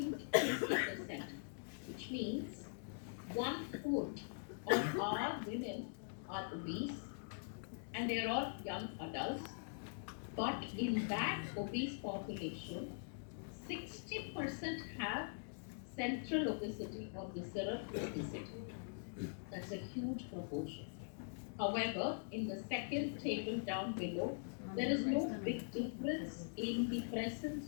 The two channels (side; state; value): right; silent; digital silence